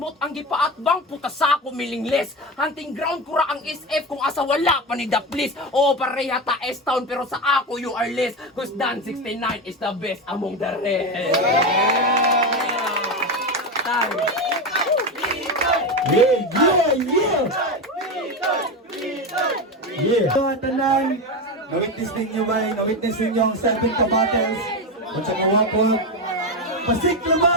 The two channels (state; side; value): normal; both; correlation 0.17